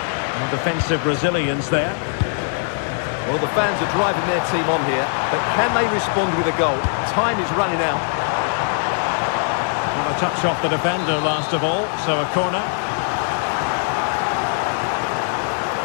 No defensive resilience there. Well, the fans are driving their team on here, but can they respond with a goal? Time is running out. Well, a touch off the defender last of all, so a corner.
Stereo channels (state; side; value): silent; right; 62 dB below the other